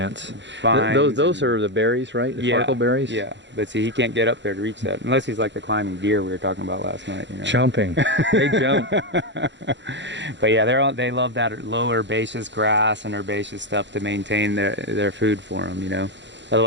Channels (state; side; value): late; left; 0.52 ms